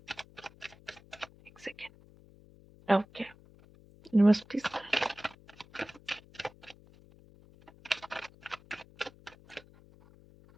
एक second. Okay, universities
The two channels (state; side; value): noise; left; hum, 24 dB below the sound